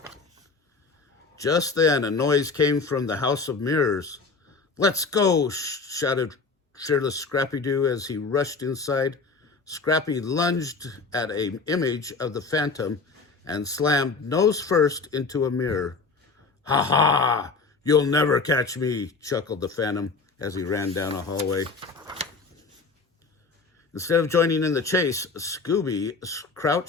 Just then, a noise came from the House of Mirrors. "Let's go!" shouted shirtless Scrappy-Doo as he rushed inside. Scrappy lunged at an image of the Phantom and slammed nose first into a mirror. "Ha ha! You'll never catch me!" chuckled the Phantom as he ran down a hallway. Instead of joining in the chase, Scooby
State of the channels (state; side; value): quieter; right; 4.3 dB